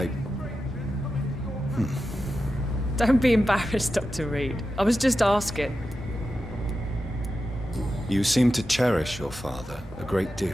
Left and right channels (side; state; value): both; normal; correlation 0.91